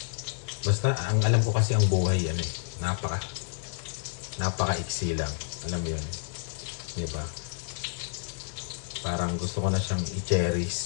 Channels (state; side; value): silent; right; digital silence